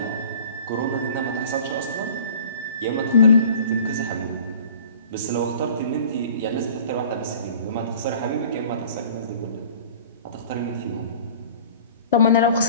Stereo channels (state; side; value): inverted; both; correlation -0.45